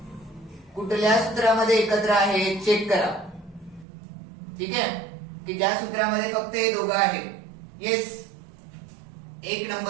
कुठल्या सूत्रामध्ये एकत्र आहे चेक करा. ठीक आहे की ज्या सूत्रामध्ये फक्त हे दोघं आहेत. येस 1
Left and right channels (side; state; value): left; drops out; at 3.9 s